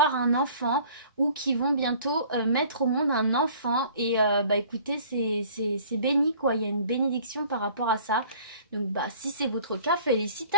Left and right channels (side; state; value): both; inverted; correlation -0.51